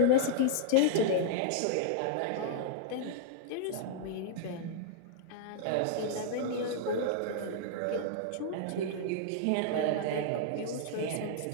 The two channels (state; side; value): different; both; correlation -0.01